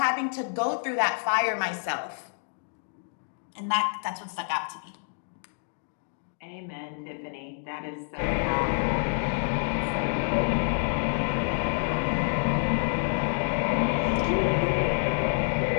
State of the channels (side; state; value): right; silent; digital silence